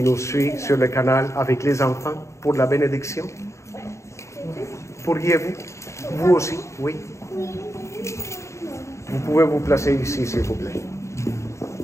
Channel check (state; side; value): late; right; 0.14 ms